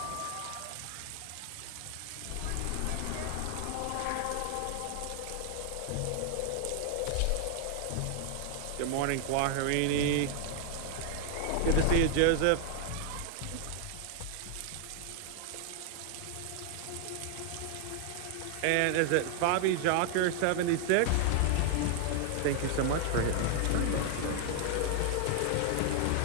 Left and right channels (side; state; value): both; different; correlation 0.00